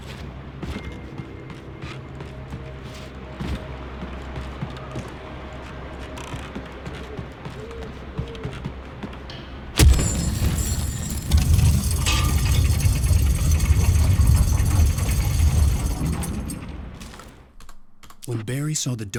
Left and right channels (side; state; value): both; identical; correlation 1.00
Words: When Barry saw the